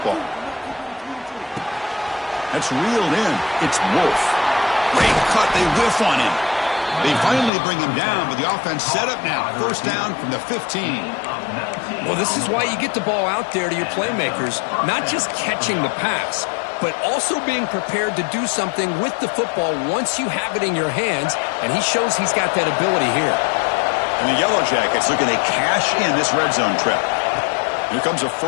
That's reeled in. It's Wolf. Great cut, they whiff on him. They finally bring him down, but the offense set up now. First down from the 15. Well, this is why you get the ball out there to your playmakers, not just catching the pass, but also being prepared to do something with the football once you have it in your hands, and he shows he's got that ability here. And the Yellow Jackets looking to cash in this red zone trip. Here comes a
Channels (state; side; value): drops out; right; at 7.5 s